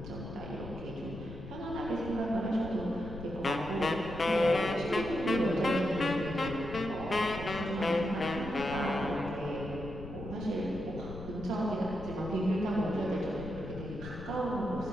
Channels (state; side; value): noise; left; rumble, 11 dB below the sound